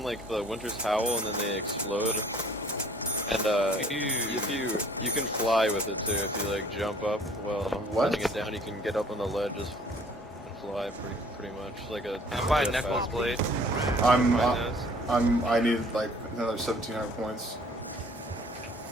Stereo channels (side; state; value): both; normal; correlation 0.55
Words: like the Winter's Howl, and then they explode. And you can fly with it too if you like jump up while letting it down. You can get up on the ledges and fly pretty much like a. I'll buy a Knuckles Blade. I need like another 1,700 points.